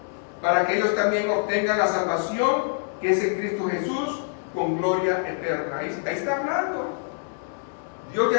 para que ellos también obtengan la salvación que es en Cristo Jesús, con gloria eterna. Ahí está hablando. Dios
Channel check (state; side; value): silent; right; digital silence